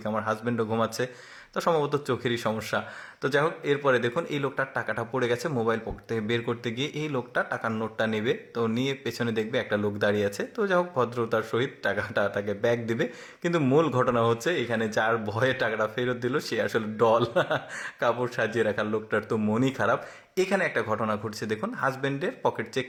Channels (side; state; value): both; identical; correlation 1.00